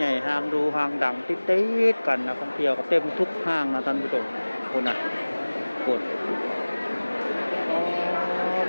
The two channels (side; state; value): both; inverted; correlation -1.00